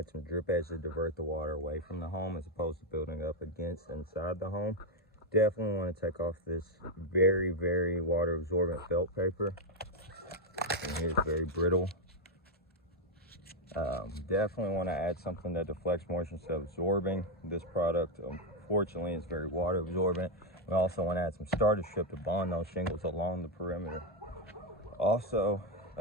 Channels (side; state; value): both; normal; correlation 0.04